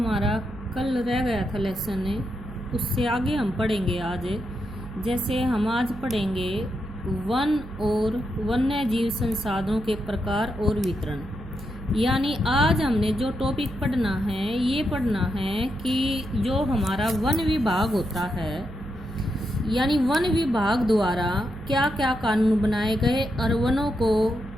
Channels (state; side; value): noise; right; hum, 14 dB below the sound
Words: कल रह गया था लेसन उससे आगे हम पढ़ेंगे आज। जैसे हम आज पढ़ेंगे वन और वन्य जीव संसाधनों के प्रकार और वितरण। यानी आज हमने जो टॉपिक पढ़ना है ये पढ़ना है कि जो हमारा वन विभाग होता है, यानी वन विभाग द्वारा क्या क्या कानून बनाए गए और वनों को